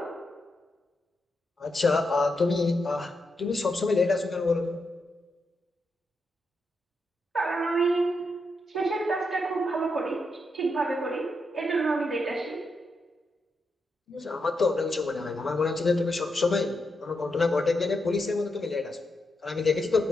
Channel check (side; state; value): both; normal; correlation 0.84